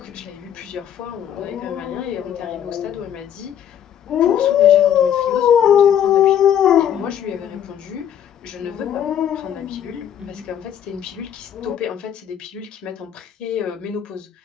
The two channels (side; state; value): right; quieter; 9.6 dB